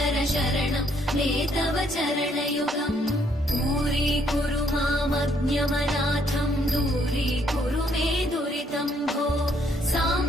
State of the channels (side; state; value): both; normal; correlation 0.69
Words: शरणं मे तव चरणयुगम् दूरीकुरु मामज्ञमनाथं दूरीकुरु मे दुरितं भो